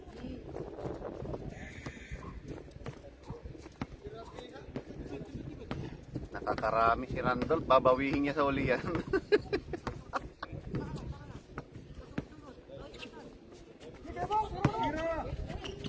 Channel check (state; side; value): identical; both; correlation 1.00